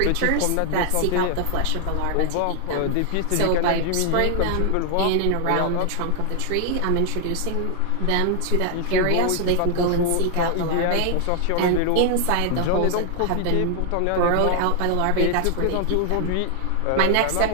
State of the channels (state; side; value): different; both; correlation 0.00